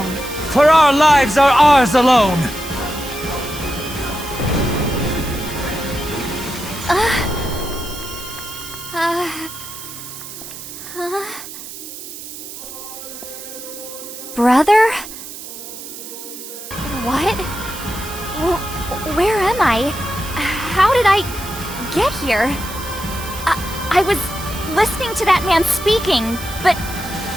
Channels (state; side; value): noise; right; hiss, 11 dB below the sound